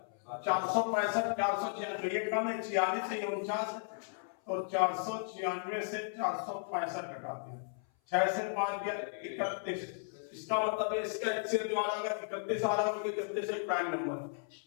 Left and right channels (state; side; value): silent; right; 54 dB below the other